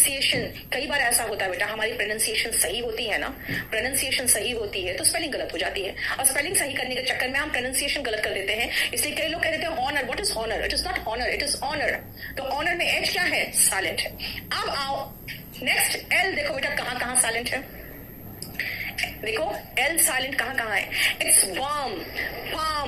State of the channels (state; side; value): identical; both; correlation 1.00